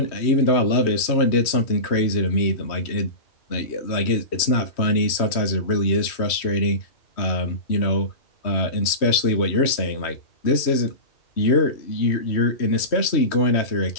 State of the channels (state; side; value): late; right; 3.1 ms